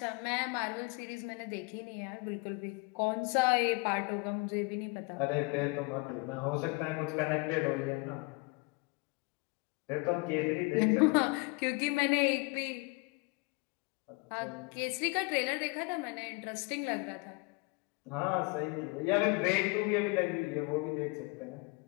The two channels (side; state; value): right; quieter; 28.3 dB